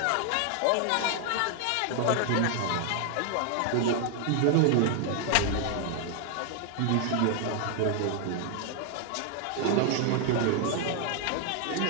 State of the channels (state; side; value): different; both; correlation 0.00